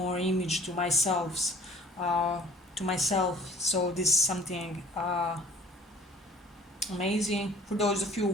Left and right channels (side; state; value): both; normal; correlation 0.52